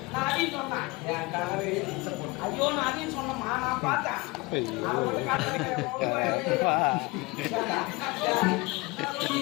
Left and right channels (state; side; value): quieter; right; 23.7 dB